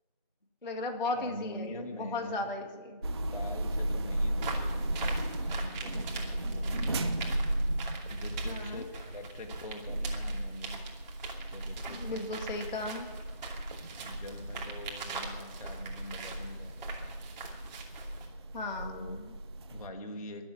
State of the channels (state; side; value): inverted; both; correlation -0.65